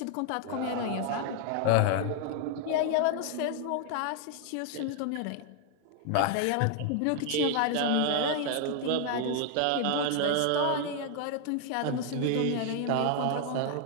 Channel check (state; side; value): different; both; correlation 0.00